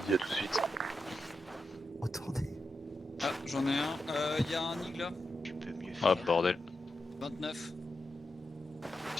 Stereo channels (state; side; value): normal; both; correlation 0.88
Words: à tout de suite. Retournez. Ah, j'en ai un. Y a un Nig là. Tu peux mieux Ah, faire. bordel. 29.